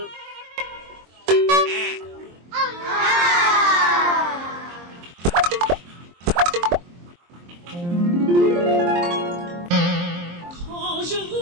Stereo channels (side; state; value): left; late; 23 ms